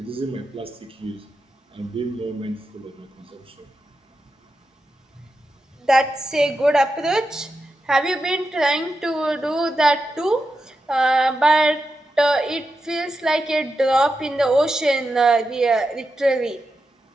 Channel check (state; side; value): normal; both; correlation 0.88